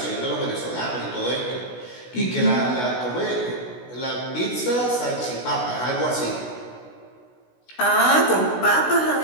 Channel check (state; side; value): late; right; 16 ms